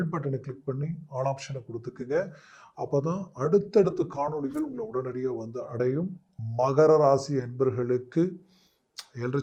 பட்டனை கிளிக் பண்ணி ஆல் ஆப்ஷனை கொடுத்துக்குங்க. அப்போதான் அடுத்தடுத்த காணொலிகள் உங்களை உடனடியாக வந்து அடையும். மகர ராசி என்பர்களுக்கு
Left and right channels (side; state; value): both; identical; correlation 1.00